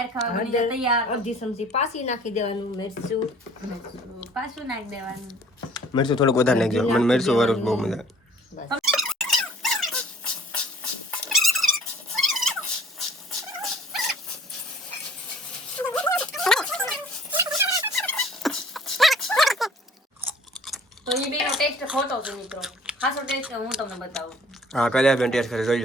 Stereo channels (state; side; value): normal; both; correlation 0.53